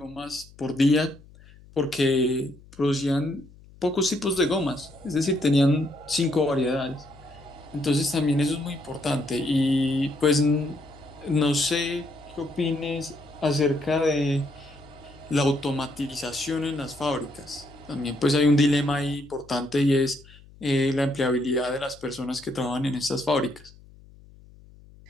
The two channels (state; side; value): noise; left; hum, 23 dB below the sound